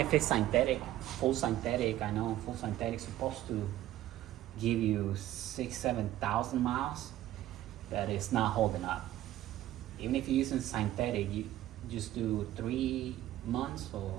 it's synthetic, full synthetic. I know full synthetic is supposed to give you 6,000-7,000 miles, but it's not holding up. Even if you're using synthetic, you just do 3 months or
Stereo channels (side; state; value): left; quieter; 13.8 dB